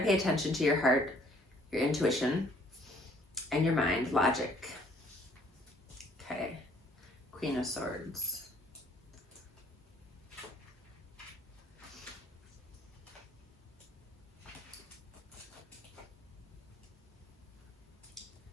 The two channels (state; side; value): normal; both; correlation 0.60